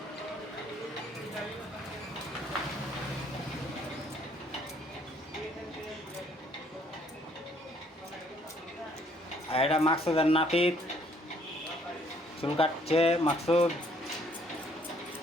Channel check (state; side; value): normal; both; correlation 0.64